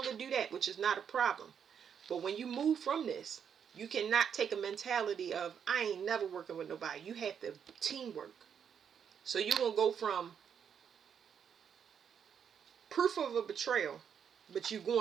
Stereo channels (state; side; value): quieter; left; 7.7 dB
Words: do that, which is not a problem. But when you move from this, you cannot take a mentality of, I ain't never working with nobody. You have to teamwork. So you're going to go from proof of a betrayal, but you